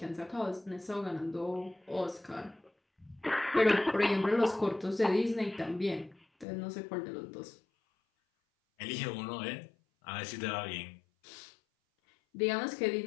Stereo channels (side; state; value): right; drops out; at 6.5 s